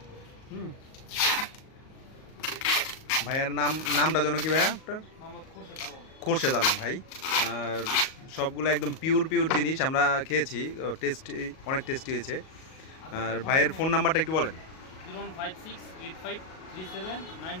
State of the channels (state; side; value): late; right; 38 ms